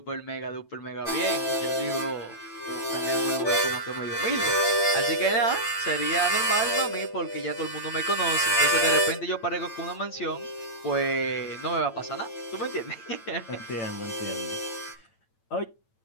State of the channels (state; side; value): late; right; 9.0 ms